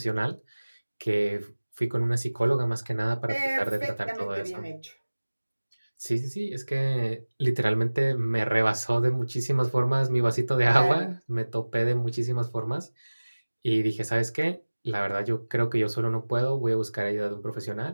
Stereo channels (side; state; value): both; inverted; correlation -1.00